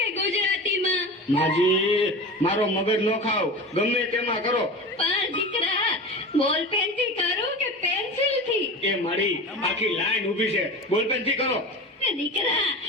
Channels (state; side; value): normal; both; correlation 0.31